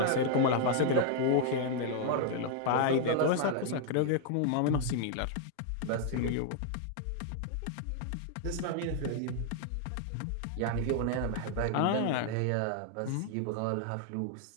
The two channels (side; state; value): both; different; correlation 0.00